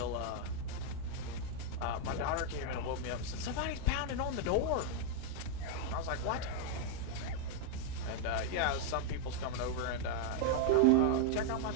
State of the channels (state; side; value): different; both; correlation 0.00